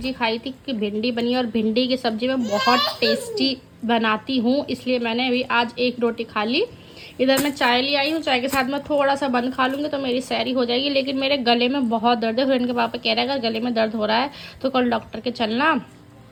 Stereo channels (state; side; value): identical; both; correlation 1.00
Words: खाई थी कि भिंडी बनी, और भिंडी की सब्जी मैं बहुत टेस्टी बनाती हूँ, इसलिए मैंने अभी आज एक रोटी खा ली। इधर मैं चाय ले आई हूँ, चाय के साथ मैं थोड़ा सा बंद खा लूँगी तो मेरी सैरी हो जाएगी। लेकिन मेरे गले में बहुत दर्द है। फ्रेंड के पापा कह रहे हैं अगर गले में दर्द हो रहा है तो कल डॉक्टर के चलना,